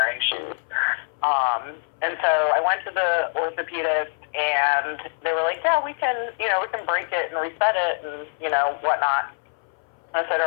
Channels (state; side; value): silent; right; 60 dB below the other